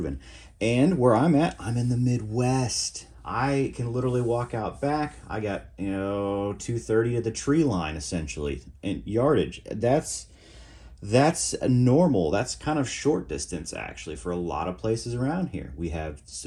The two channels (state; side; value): identical; both; correlation 1.00